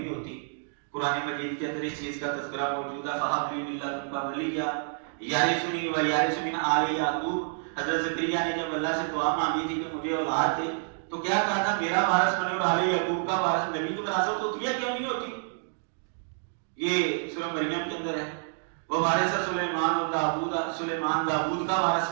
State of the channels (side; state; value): left; silent; digital silence